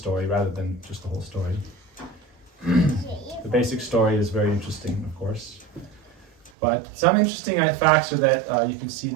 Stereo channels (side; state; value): left; drops out; at 6.5 s